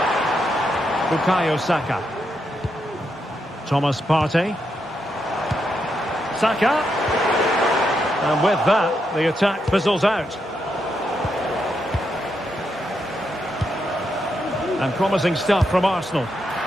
Bukayo Saka. Thomas Partey. Saka. And with that, the attack fizzles out. And promising stuff from Arsenal.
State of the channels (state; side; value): normal; both; correlation 0.82